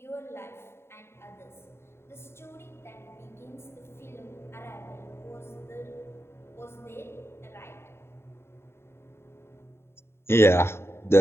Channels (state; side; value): late; right; 0.12 ms